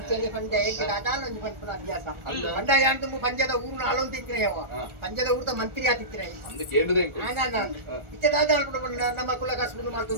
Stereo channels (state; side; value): late; left; 1.4 ms